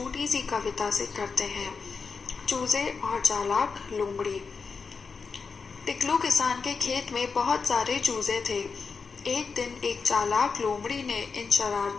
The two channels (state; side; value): quieter; right; 5.1 dB